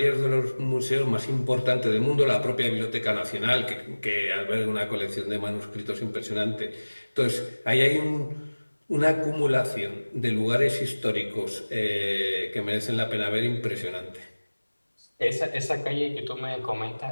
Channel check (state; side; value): inverted; both; correlation -1.00